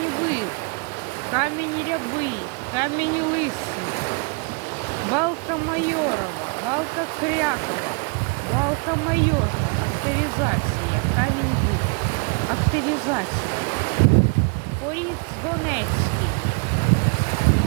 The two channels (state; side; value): quieter; left; 36.1 dB